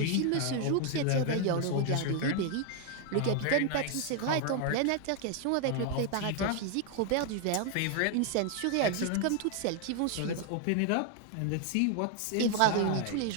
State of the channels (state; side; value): different; both; correlation 0.00